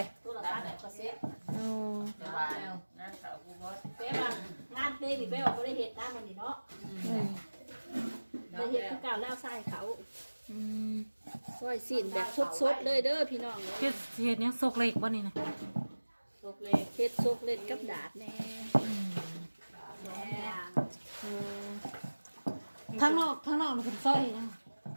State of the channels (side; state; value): both; inverted; correlation -1.00